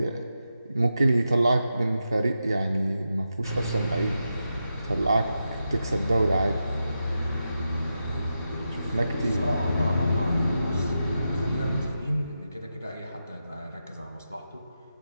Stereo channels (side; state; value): both; inverted; correlation -0.88